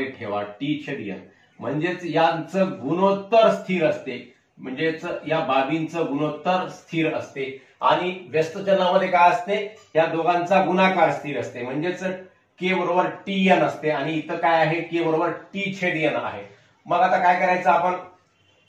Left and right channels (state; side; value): identical; both; correlation 1.00